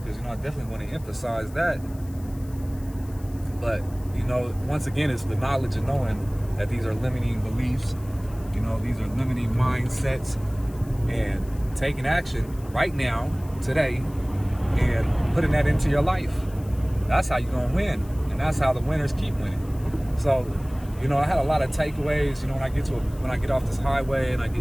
because I definitely want to emphasize that. But once again, it's the knowledge of knowing that these are limiting beliefs, these are limiting mindsets, and taking action right now, today, and putting that into your life. That's how you're gonna win, and that's how the winners keep winning. So, I had a lot of takeaways. When I get off this highway and I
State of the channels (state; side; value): noise; left; hiss, 24 dB below the sound